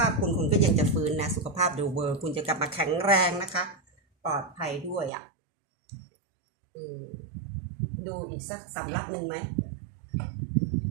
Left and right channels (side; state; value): left; drops out; at 5.1 s